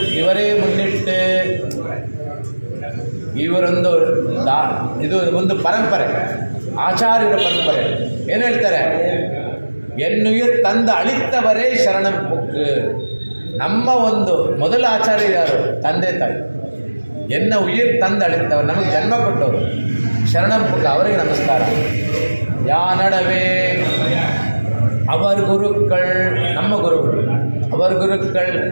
ಇವರೇ ಮುನ್ನಿಟ್ಟು ಇವರೊಂದು ಇದು ಒಂದು ಪರಂಪರೆ, ಆಚಾರ್ಯರ ಪರಂಪರೆ. ಏನು ಹೇಳ್ತಾರೆ? ಎನ್ನುಯಿರ್ ತಂದ ಅಳಿತ್ತವರೇ ಶರಣಂ ಬುಕ್. ನಮ್ಮ ಒಂದು ಮೊದಲ ಆಚಾರ್ಯ ಯಾರು? ತಂದೆ ತಾಯಿ. ಎನ್ನ ಉಯಿರ್ ತಂದ ಅಳಿತ್ತವರು, ನಮಗೆ ಜನ್ಮ ಕೊಟ್ಟವರು ಶರಣಂ ಬುಕ್, ಅವರಿಗೆ ನಮಸ್ಕಾರ. ಯಾ ನಡವೆ ಅವರ ಗುರುಗಳು, ನಮ್ಮ ಗುರುಗಳು, ಅವರ ಗುರುಗಳು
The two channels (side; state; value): both; inverted; correlation -1.00